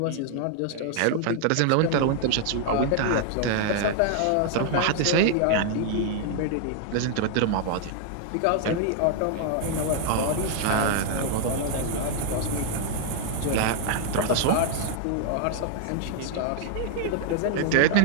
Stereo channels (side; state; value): both; different; correlation 0.00